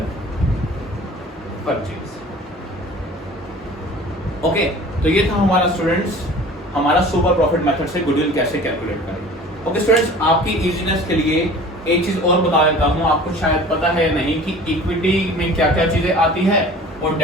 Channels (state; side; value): normal; both; correlation 0.44